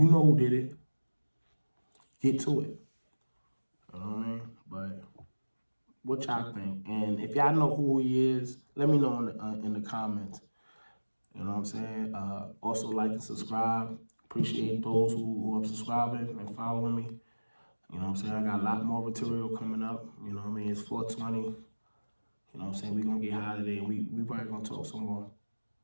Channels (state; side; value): inverted; both; correlation -1.00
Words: know who did it. Get to it. You know what I mean? But what y'all think? And if y'all know who he is, let me know in the comments. You know what I'm saying? Also like and subscribe. Appreciate those who are subscribing and following me. You know what I'm saying? I got a lot more material coming up. You know what I mean? It's 420. You know what I'm saying? We're going to get high today. We probably going to talk some more.